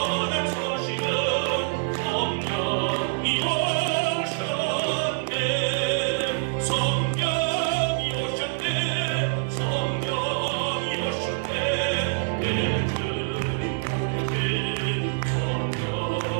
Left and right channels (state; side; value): silent; left; digital silence